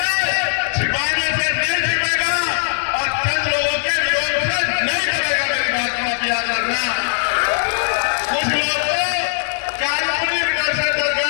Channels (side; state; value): right; silent; 66 dB below the other